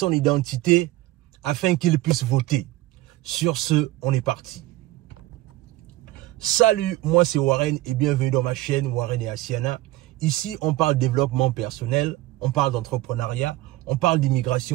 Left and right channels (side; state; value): left; quieter; 16.9 dB